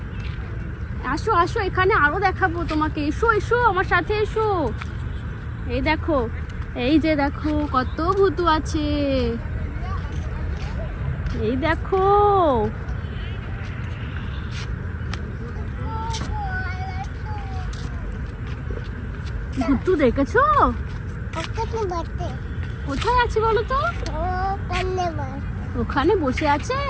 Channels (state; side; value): identical; both; correlation 1.00